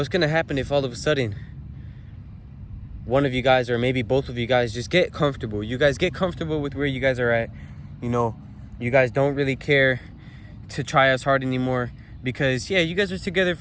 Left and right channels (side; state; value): both; identical; correlation 1.00